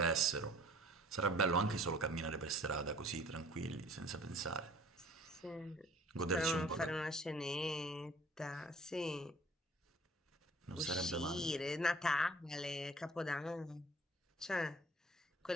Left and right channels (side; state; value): both; normal; correlation 0.51